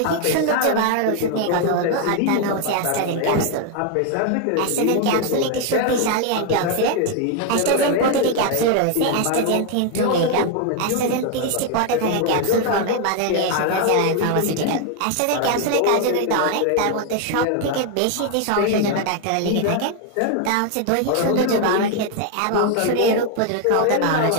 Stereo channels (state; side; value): different; both; correlation 0.01